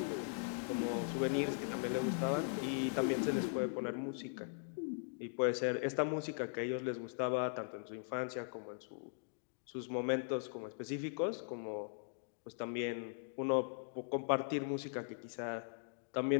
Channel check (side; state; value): right; silent; digital silence